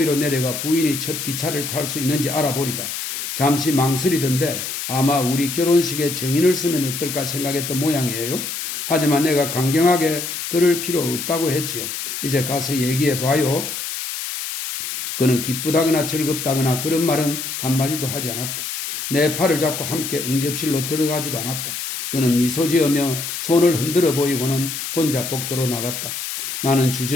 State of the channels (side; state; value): left; noise; hiss, 5 dB below the sound